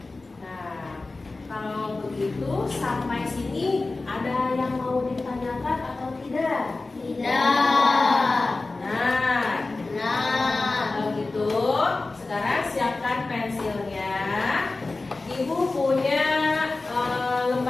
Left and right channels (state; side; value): quieter; right; 3.4 dB